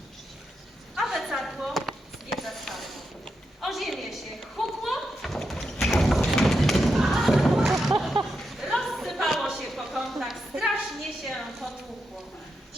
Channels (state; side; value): normal; both; correlation 0.86